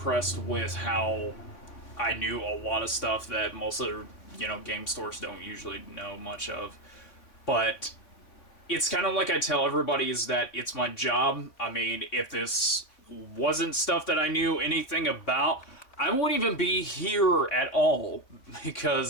with how I knew a lot of stuff that most of the game stores don't usually know much of. But it's kind of like I tell everybody, is that it's my job. I mean, if this wasn't stuff that I knew anything about, I wouldn't even be here at all,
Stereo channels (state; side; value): late; right; 3.6 ms